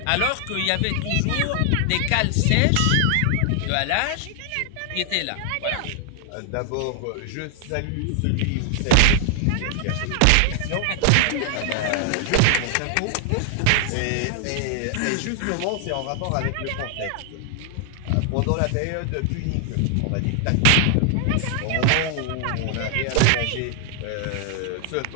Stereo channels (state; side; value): different; both; correlation 0.00